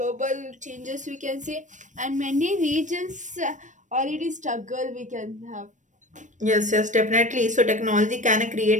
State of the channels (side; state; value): left; late; 0.36 ms